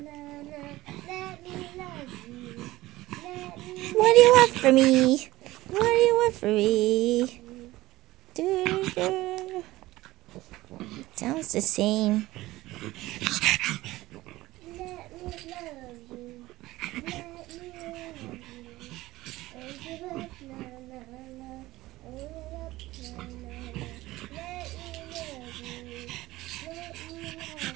What do you want from me? What do you want from me? Sounds the same.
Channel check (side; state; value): left; quieter; 17.7 dB